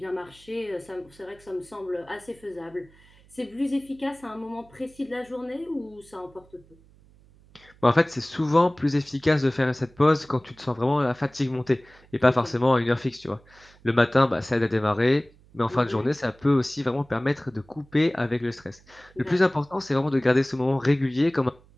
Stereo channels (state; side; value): noise; right; hum, 28 dB below the sound